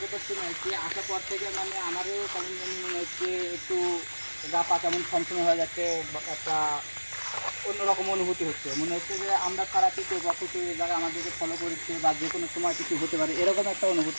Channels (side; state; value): both; inverted; correlation -1.00